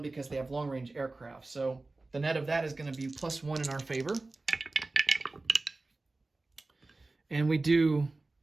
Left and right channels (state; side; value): quieter; left; 3.3 dB